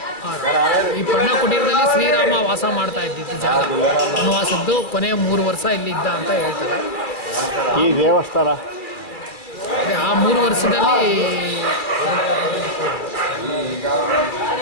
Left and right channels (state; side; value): late; right; 2.4 ms